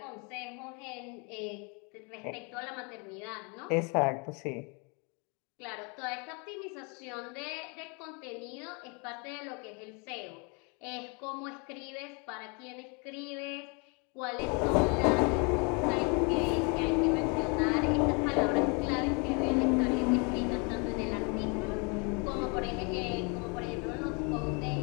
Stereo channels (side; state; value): right; quieter; 33.1 dB